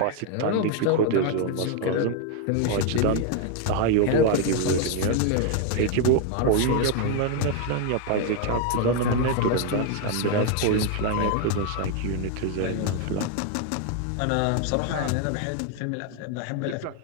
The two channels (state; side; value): different; both; correlation 0.00